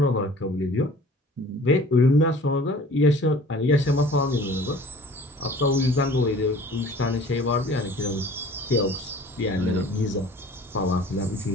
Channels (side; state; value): both; normal; correlation 0.48